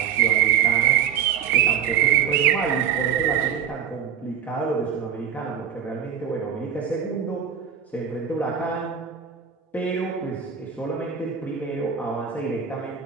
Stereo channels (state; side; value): quieter; left; 8.2 dB